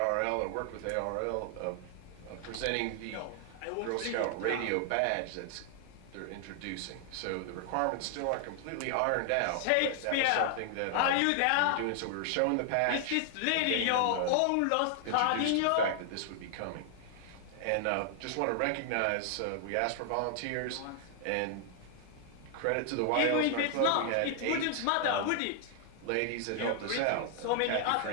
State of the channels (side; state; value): both; different; correlation 0.00